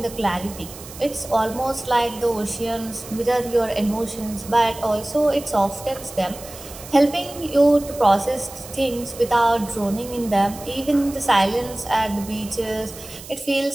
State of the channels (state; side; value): noise; right; hiss, 15 dB below the sound